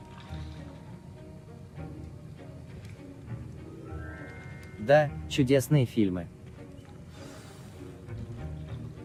Да, чудесные фильмы.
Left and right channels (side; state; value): both; identical; correlation 1.00